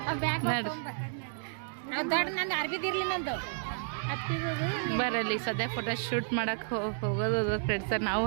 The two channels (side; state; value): left; silent; digital silence